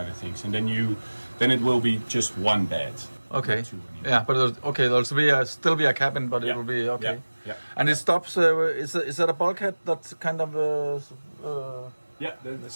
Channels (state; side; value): inverted; both; correlation -1.00